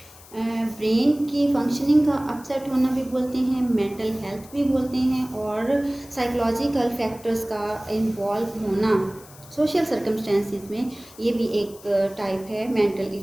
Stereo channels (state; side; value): noise; left; hiss, 21 dB below the sound